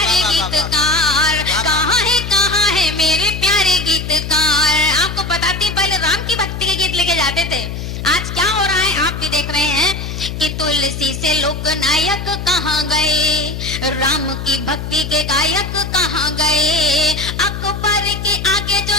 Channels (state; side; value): noise; left; hum, 6 dB below the sound